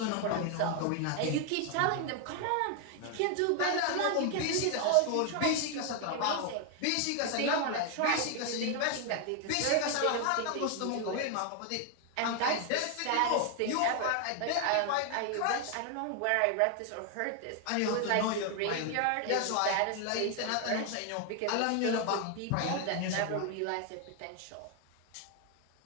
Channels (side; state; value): both; different; correlation 0.01